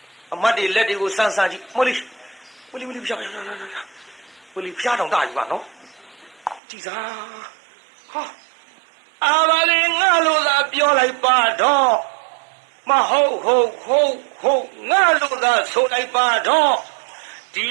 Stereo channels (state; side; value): drops out; left; at 6.6 s